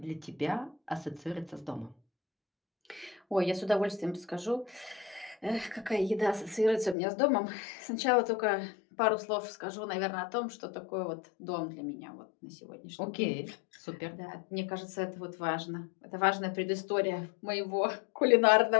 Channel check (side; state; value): right; drops out; at 7.0 s